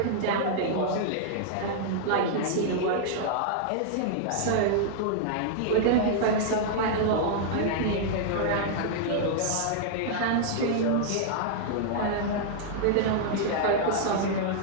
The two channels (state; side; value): different; both; correlation -0.01